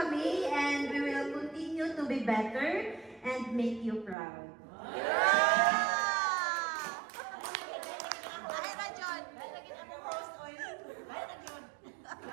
mi, and we will continue to be better and make you proud.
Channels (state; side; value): drops out; left; at 4.2 s